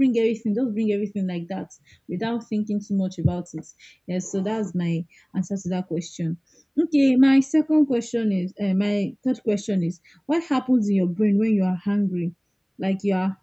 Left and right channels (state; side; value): identical; both; correlation 1.00